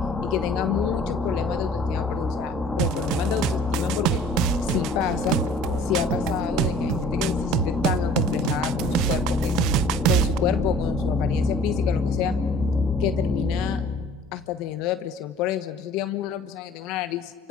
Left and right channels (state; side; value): normal; both; correlation 0.49